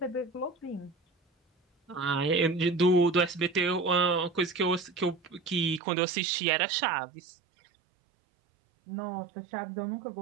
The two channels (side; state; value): left; drops out; at 5.8 s